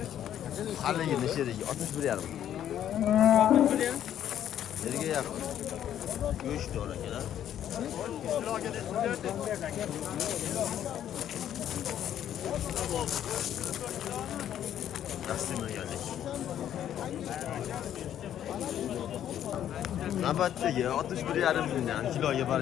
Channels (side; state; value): right; quieter; 10.6 dB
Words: Haligini sherigi 61 yarım. Yerga yaqin. Go'shtdor akalar. Yaxshimaganlik. Navbatdagi 61,5 mingdan kiloga